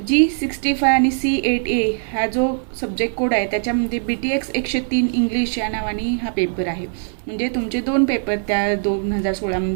G65 आणि C8A हा जो सब्जेक्ट कोड आहे त्याच्यामध्ये BTX 103 इंग्लिश या नावाने हा पेपर आहे। म्हणजे तुमचे दोन पेपर त्या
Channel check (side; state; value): left; silent; 65 dB below the other